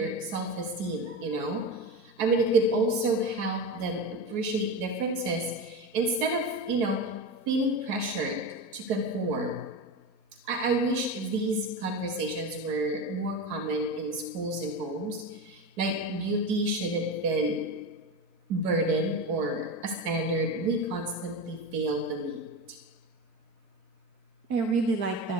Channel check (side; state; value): left; late; 4.7 ms